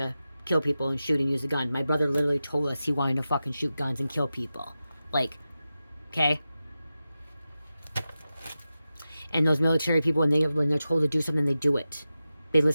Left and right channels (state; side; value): inverted; both; correlation -0.93